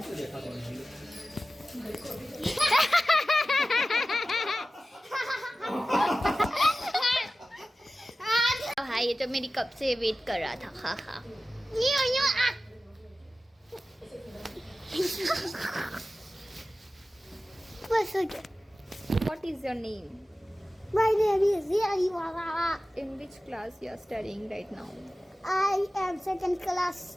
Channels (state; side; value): normal; both; correlation 0.95